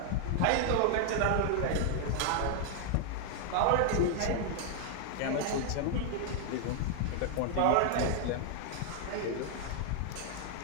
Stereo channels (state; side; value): different; both; correlation 0.00